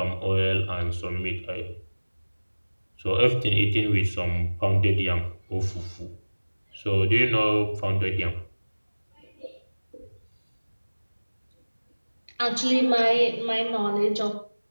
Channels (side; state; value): both; inverted; correlation -1.00